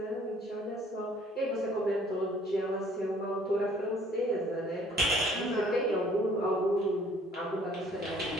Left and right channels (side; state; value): both; normal; correlation 0.57